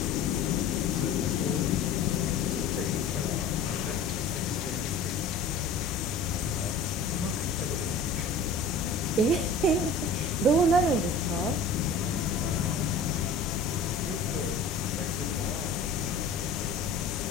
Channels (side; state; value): right; quieter; 3.5 dB